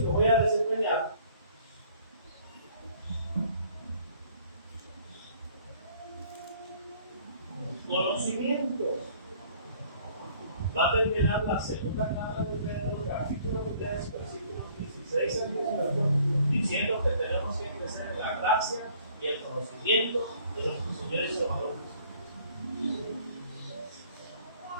voy a desempeñar, conocimiento. Va a terminar la segunda carta de Pedro, capítulo 3, versículos 16 al 18, diciendo que tenemos que crecer en la gracia y el conocimiento de nuestro Señor y Salvador Jesucristo.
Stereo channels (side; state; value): both; inverted; correlation -0.58